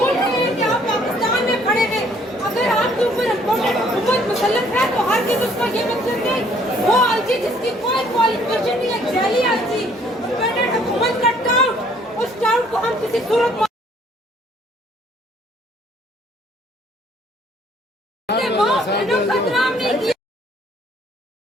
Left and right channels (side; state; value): both; normal; correlation 0.61